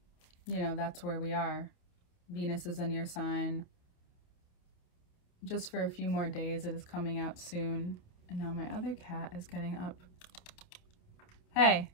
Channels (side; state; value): right; late; 28 ms